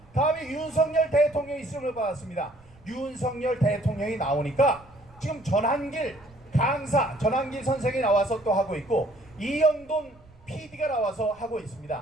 다음에 윤석열 대통령이 쓰임을 받았습니다. 윤석열 대통령이 나오니까 지금 전한길 강사 전한길 선생이 나와서 또 하고 있고 이영돈 PD가 나와서 하고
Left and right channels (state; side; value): noise; right; rumble, 26 dB below the sound